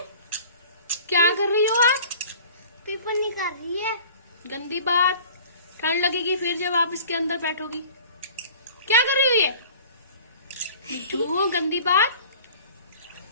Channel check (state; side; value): inverted; both; correlation -0.45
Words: क्या कर रही हो आप? पेपर निकाल रही है। गंदी बात, ठंड लगेगी फिर जब आप इसके अंदर बैठोगी। क्या कर रही हो ये? मिट्टू गंदी बात।